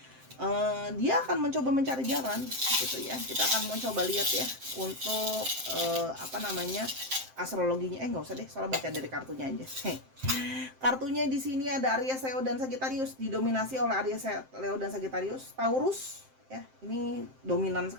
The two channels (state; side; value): late; left; 7.6 ms